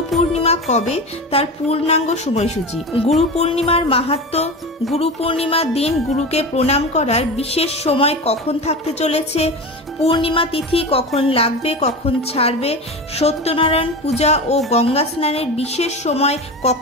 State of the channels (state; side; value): normal; both; correlation 0.26